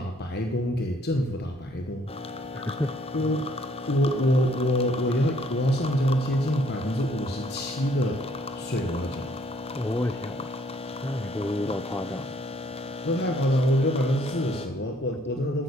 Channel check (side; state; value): both; normal; correlation 0.64